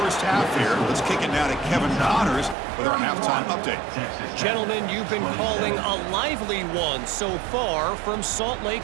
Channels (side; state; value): left; drops out; at 2.6 s